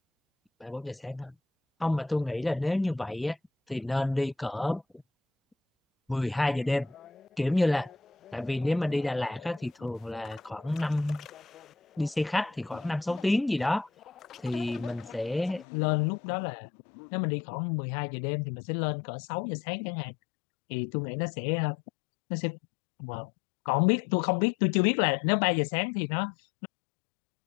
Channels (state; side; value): drops out; right; at 15.7 s